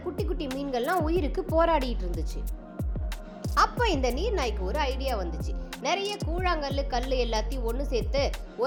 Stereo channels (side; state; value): both; identical; correlation 1.00